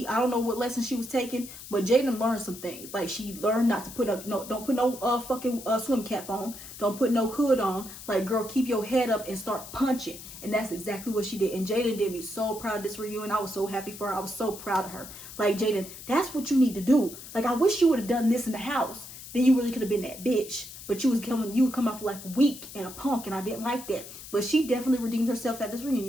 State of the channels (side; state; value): left; noise; hiss, 14 dB below the sound